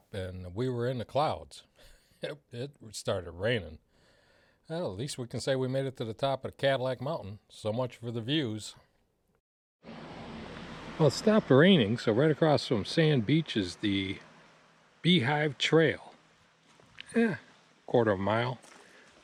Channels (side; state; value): both; identical; correlation 1.00